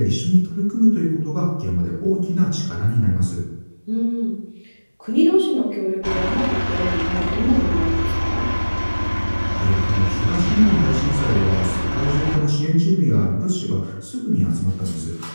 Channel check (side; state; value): both; inverted; correlation -1.00